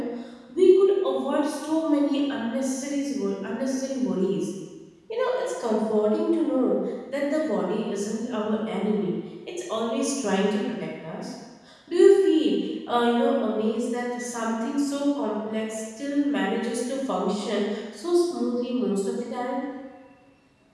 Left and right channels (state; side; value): identical; both; correlation 1.00